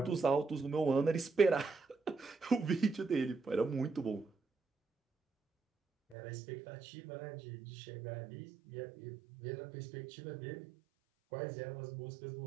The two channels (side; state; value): left; drops out; at 6.2 s